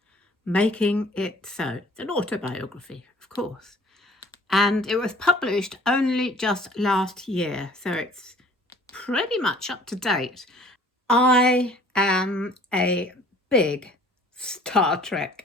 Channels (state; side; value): normal; both; correlation 0.52